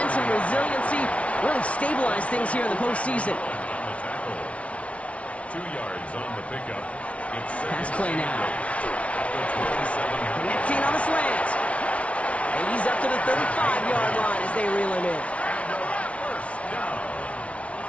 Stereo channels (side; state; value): right; late; 0.063 ms